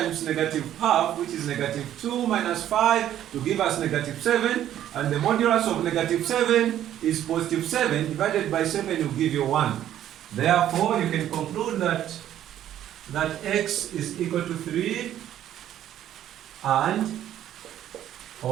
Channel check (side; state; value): left; quieter; 11.5 dB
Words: negative half, which is negative 2 minus 5 to give us negative 7, and the modulus of negative 7 is positive 7, divided by 7 will give you 1. Therefore, you can conclude that x is equal to 3, and,